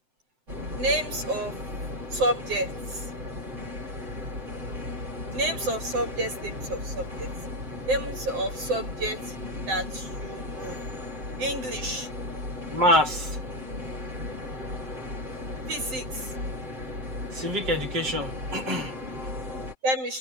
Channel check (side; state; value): left; late; 7.7 ms